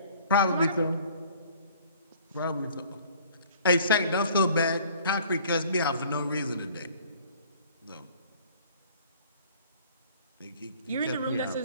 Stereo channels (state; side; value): inverted; both; correlation -0.53